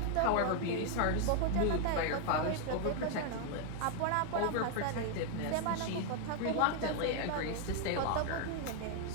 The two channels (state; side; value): different; both; correlation 0.00